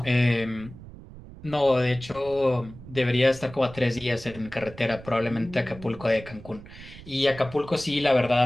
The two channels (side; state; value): right; noise; rumble, 17 dB below the sound